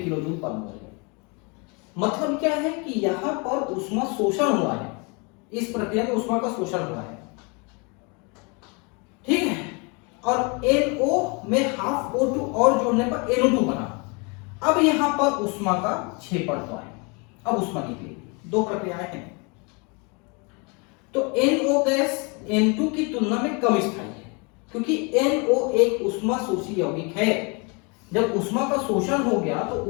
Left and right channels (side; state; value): right; quieter; 31.6 dB